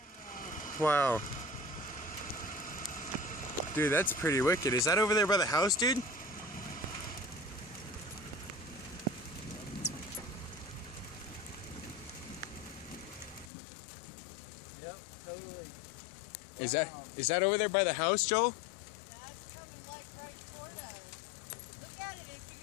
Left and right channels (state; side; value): drops out; right; at 13.5 s